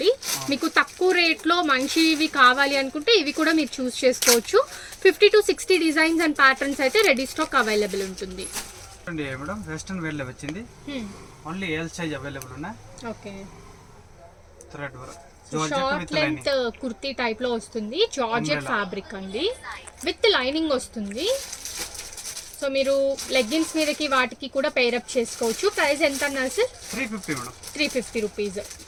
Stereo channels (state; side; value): identical; both; correlation 1.00